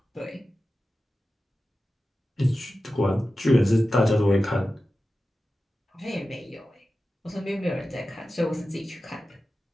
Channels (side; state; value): both; normal; correlation 0.94